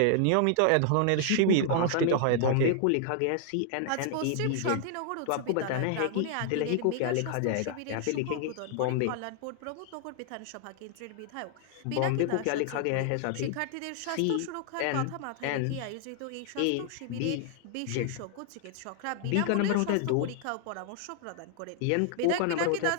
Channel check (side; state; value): both; different; correlation 0.00